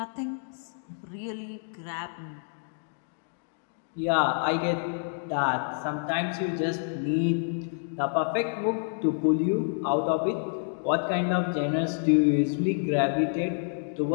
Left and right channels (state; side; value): silent; right; digital silence